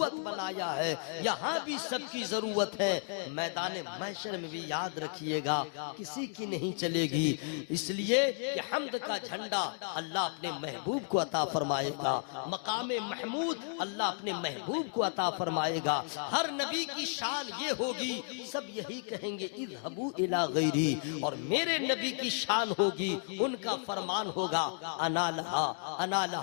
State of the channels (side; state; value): right; silent; 56 dB below the other